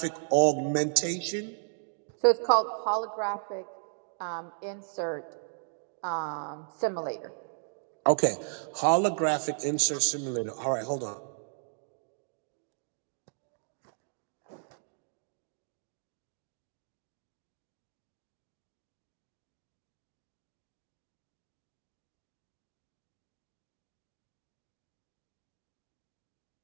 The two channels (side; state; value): left; silent; digital silence